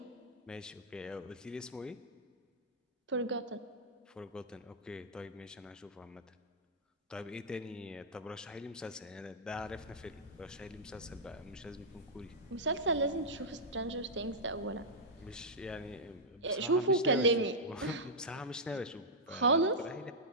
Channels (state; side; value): normal; both; correlation -0.08